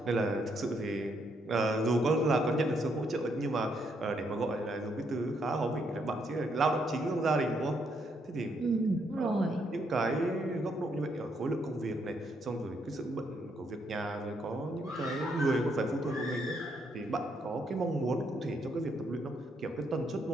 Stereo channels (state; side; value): normal; both; correlation 0.75